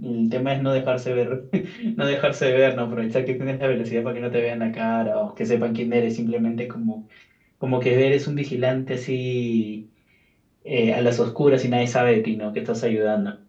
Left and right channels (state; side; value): identical; both; correlation 1.00